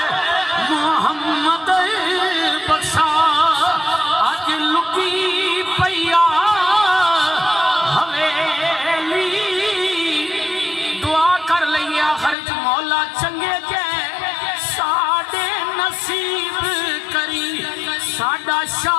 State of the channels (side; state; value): right; drops out; at 12.4 s